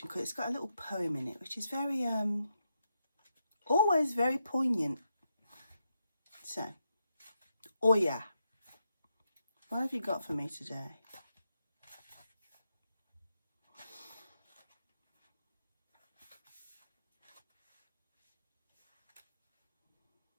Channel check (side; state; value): both; inverted; correlation -0.84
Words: because it's got a little poem in it, which is very, always very poignant. So, oh yeah, what have you got for me today?